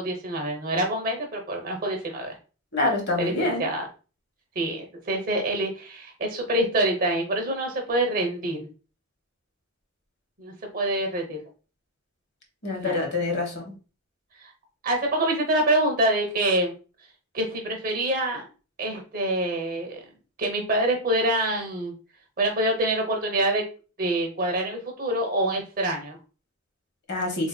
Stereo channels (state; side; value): normal; both; correlation -0.07